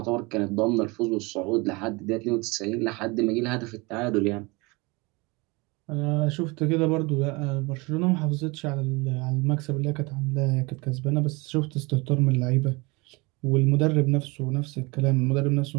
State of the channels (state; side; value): quieter; left; 26.0 dB